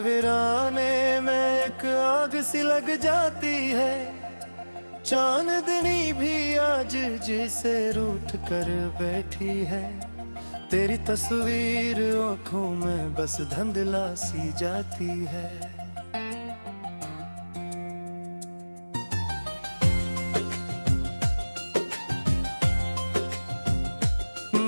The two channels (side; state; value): both; inverted; correlation -1.00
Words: वीराने में एक आग सी लग जाती है। चांदनी भी आज जिसे रूठ कर बैठी है, तेरी तस्वीर आंखों में बस धुंधला सी जाती है।